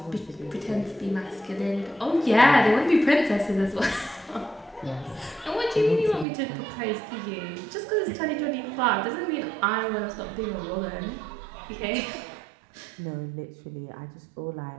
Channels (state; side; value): drops out; left; at 6.2 s